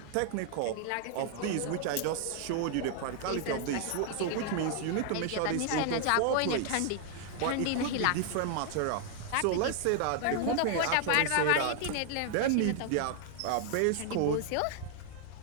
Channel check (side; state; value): both; different; correlation 0.00